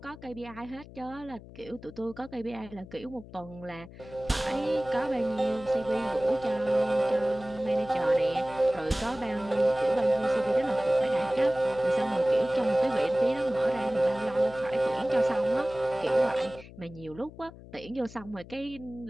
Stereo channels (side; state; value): left; noise; hum, 18 dB below the sound